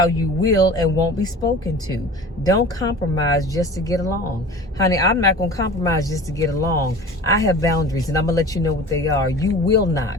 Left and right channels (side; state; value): both; normal; correlation 0.39